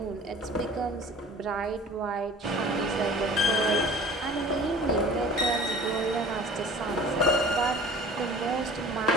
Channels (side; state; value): both; normal; correlation 0.44